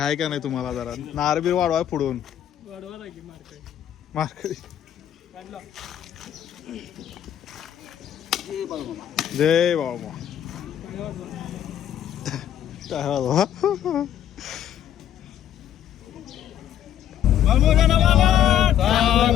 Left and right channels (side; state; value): right; quieter; 10.6 dB